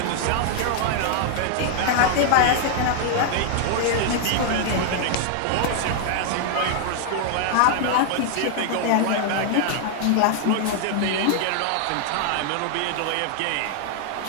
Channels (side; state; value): both; different; correlation 0.00